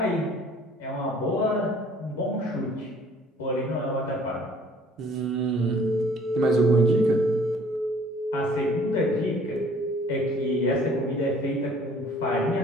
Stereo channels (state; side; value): normal; both; correlation 0.55